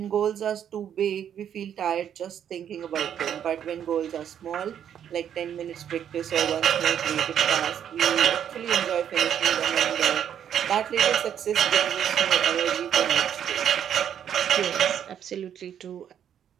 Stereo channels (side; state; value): left; quieter; 9.2 dB